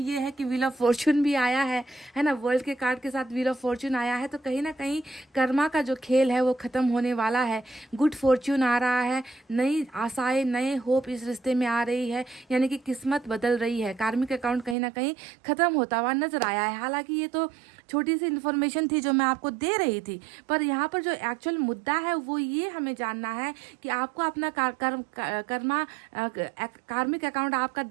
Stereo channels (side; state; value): left; drops out; at 14.8 s